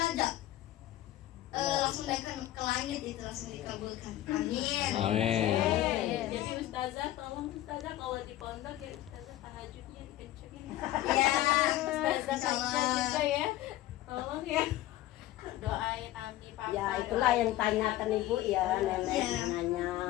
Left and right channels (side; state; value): right; quieter; 14.7 dB